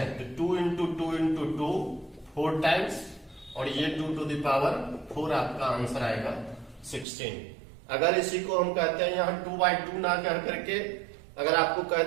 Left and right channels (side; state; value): left; drops out; at 7.1 s